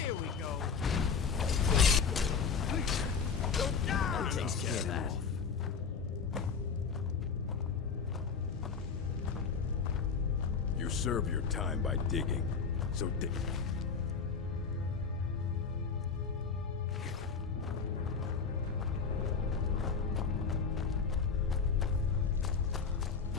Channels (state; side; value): quieter; right; 5.5 dB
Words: Here we go. Please! Don't die! Takes care of that. You serve your time by digging, so dig.